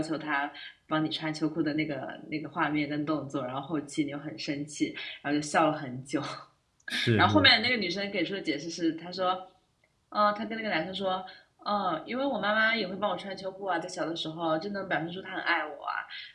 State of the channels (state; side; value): identical; both; correlation 1.00